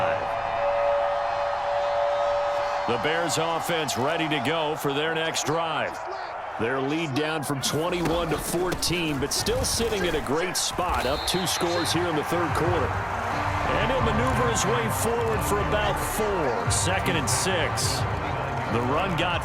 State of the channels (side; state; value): both; identical; correlation 1.00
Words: The Bears offense ready to go for their next drive. Their lead down from 21 to 14, but still sitting at a great spot, up 2 scores here in the third quarter. And he'll maneuver his way forward for about 4. 2nd and 6. The run got